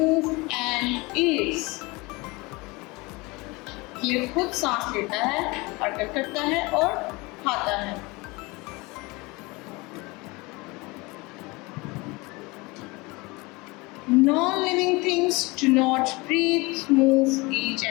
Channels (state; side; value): quieter; right; 24.6 dB